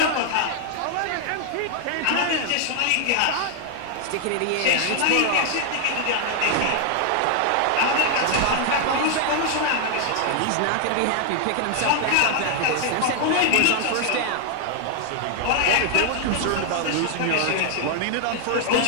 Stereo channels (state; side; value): different; both; correlation 0.00